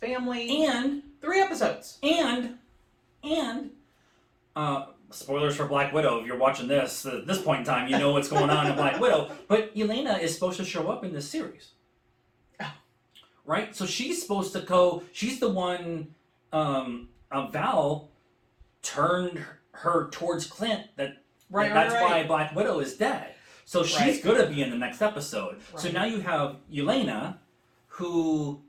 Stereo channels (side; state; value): both; identical; correlation 1.00